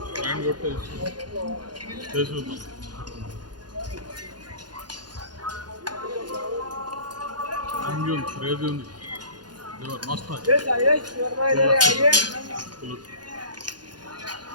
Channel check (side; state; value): left; late; 0.70 ms